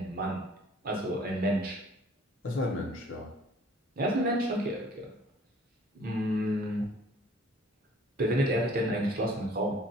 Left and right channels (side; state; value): both; normal; correlation 0.54